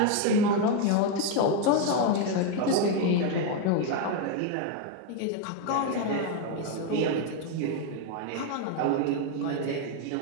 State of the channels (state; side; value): different; both; correlation 0.01